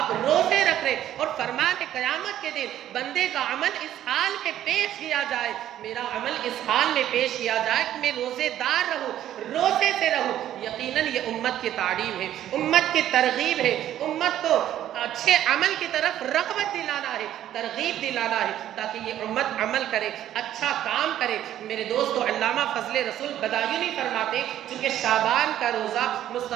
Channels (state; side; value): quieter; left; 11.9 dB